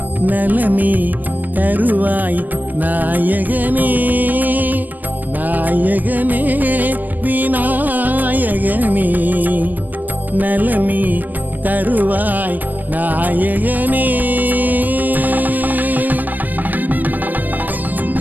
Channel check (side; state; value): left; late; 0.086 ms